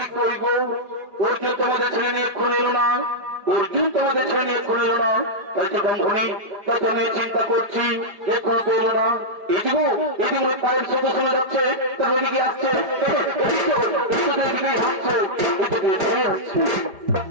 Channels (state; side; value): late; left; 5.0 ms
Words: অর্জুন তোমাদের ছেলে নিয়ে খুন এলো না, অর্জুন তোমাদের ছেলে নিয়ে খুন এলো না, তাই তো ব্রাহ্মণী প্রথমে চিন্তা করছি যে খুন এলো না। এদিকে এদিকে পায়ের শব্দ শোনা যাচ্ছে, তার ওদিকে আসছে, হাসছে,